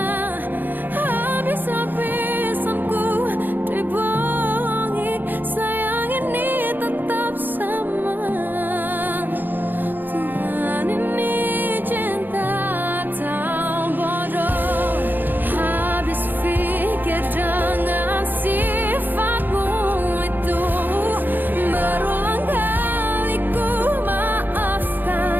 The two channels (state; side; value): late; left; 0.090 ms